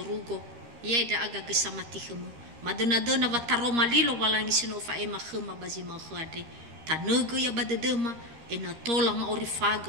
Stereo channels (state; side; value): late; left; 13 ms